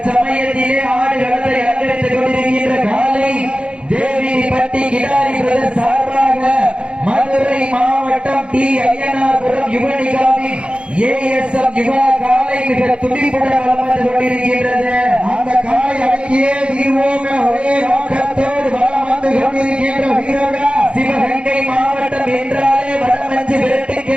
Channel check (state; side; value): late; left; 0.056 ms